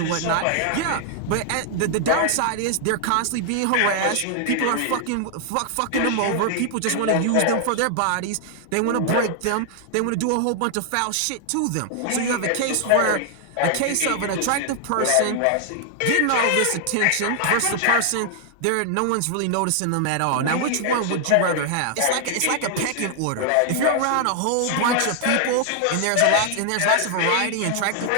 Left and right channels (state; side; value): different; both; correlation 0.00